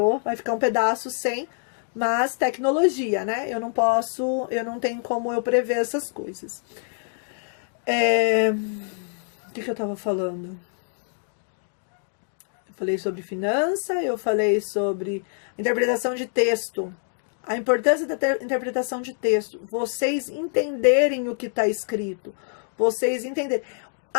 vai ficar um pedaço sem. Mas tecnologia, né? Eu não tenho como eu prever essas coisas. O que eu tava falando? Eu falei sobre finança, eu falei sobre interpretação de texto. A importância da interpretação de texto. Vocês entenderem o que está escrito. Vocês entenderem.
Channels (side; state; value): right; silent; 62 dB below the other